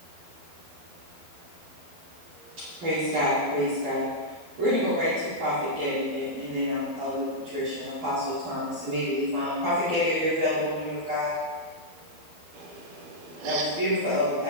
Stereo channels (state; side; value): late; left; 12 ms